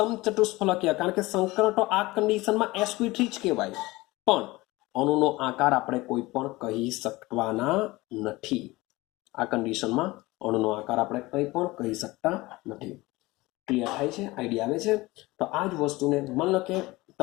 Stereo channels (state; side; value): quieter; right; 20.7 dB